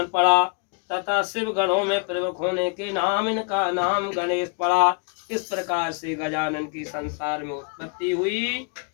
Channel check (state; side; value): quieter; right; 36.8 dB